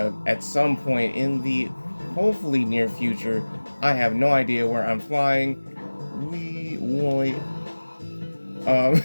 some point in the hopefully near future. I have no idea where I'm flying. We wait.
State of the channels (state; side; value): inverted; both; correlation -1.00